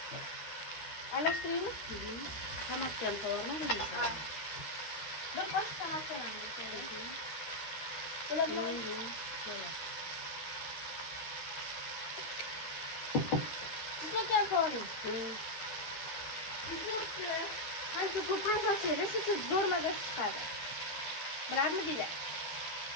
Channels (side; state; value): right; late; 12 ms